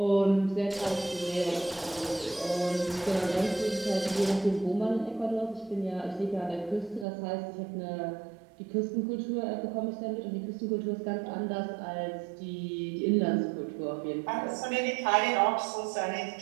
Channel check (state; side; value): drops out; left; at 7.1 s